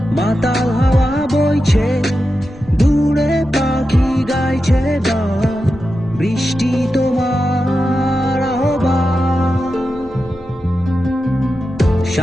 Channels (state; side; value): normal; both; correlation 0.90